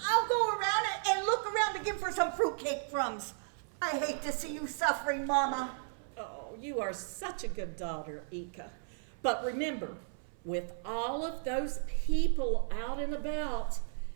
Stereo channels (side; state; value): left; silent; 55 dB below the other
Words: I'll go around and look around again for some fruitcake crumbs. I hate to see you suffering, Mama. Oh, you are such a good daughter, Ika. But remember, with all of those people out and about,